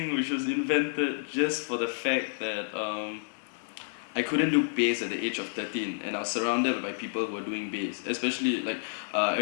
which was invented just for the fact that I couldn't do bass at the age of 13, and I was surrounded by people who were doing bass. Especially like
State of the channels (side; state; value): right; quieter; 35.0 dB